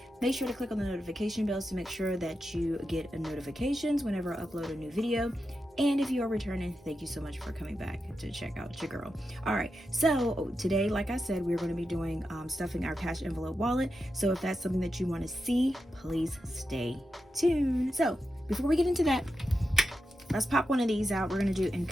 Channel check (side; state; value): both; normal; correlation 0.89